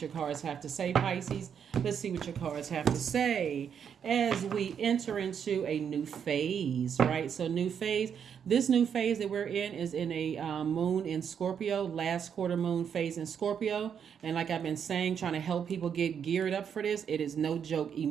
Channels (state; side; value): quieter; left; 7.7 dB